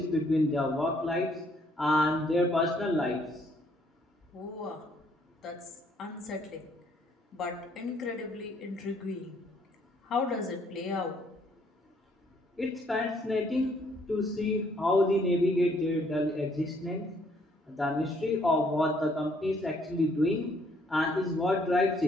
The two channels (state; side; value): normal; both; correlation 0.66